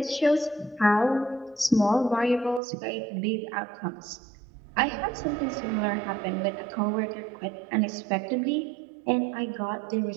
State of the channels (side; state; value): left; drops out; at 2.6 s